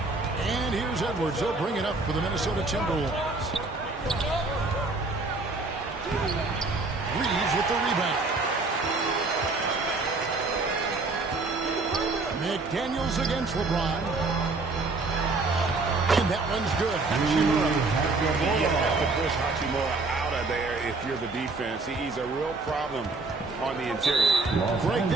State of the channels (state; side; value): quieter; left; 3.5 dB